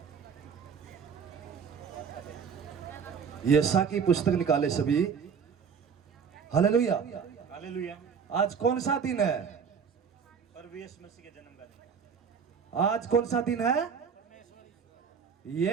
यशा की पुस्तक निकाले सभी। हालेलुया। हालेलुया। आज कौन सा दिन है? प्रभु यीशु मसीह के जन्म का दिन। आज कौन सा दिन है?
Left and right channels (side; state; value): left; quieter; 6.6 dB